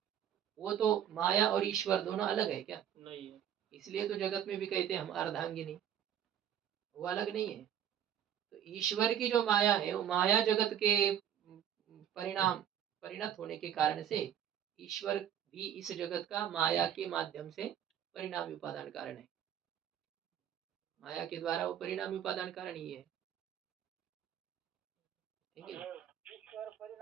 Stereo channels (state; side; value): quieter; left; 9.7 dB